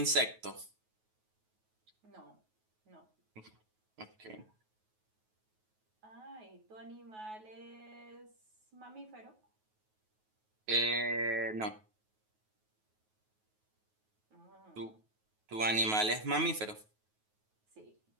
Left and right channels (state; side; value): late; left; 9.3 ms